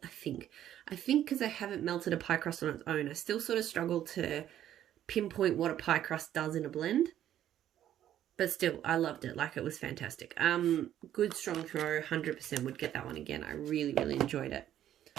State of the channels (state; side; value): quieter; left; 11.4 dB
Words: haven't melted a pie crust on its own. I still sort of struggle to pinpoint what a pie crust does in a blend. But still, I loved it. Like, it was fantastic. Good strong throw. 100% would get that one again. I really, really enjoyed it.